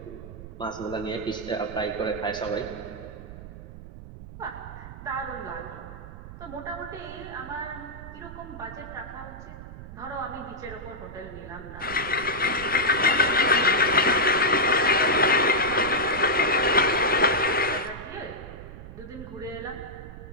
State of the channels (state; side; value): noise; right; rumble, 13 dB below the sound